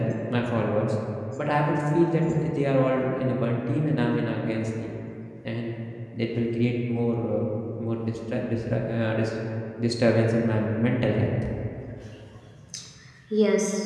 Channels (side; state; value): both; identical; correlation 1.00